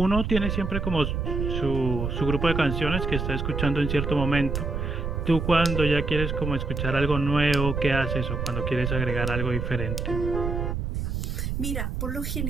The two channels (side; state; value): right; noise; rumble, 2 dB below the sound